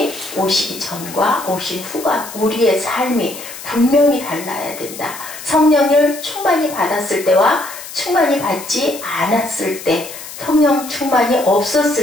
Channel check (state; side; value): noise; left; hiss, 13 dB below the sound